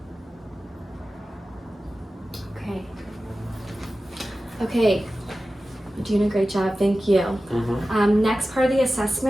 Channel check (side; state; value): both; normal; correlation 0.95